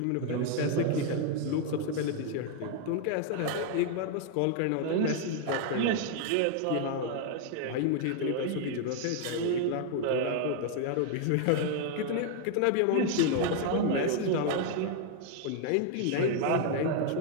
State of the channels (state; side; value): different; both; correlation 0.00